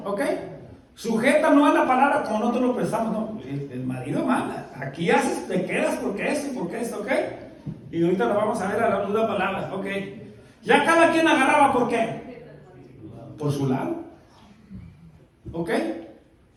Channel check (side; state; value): both; identical; correlation 1.00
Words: ¿ok? Sujeta no es la palabra como nosotros lo pensamos, no. El marido manda. Aquí haces, te quedas porque esto, ¿ok? Y ahorita lo vamos a ver a la luz de la palabra, ¿ok? Ya cada quien agarraba, ¿por qué? Por su lado, ¿ok?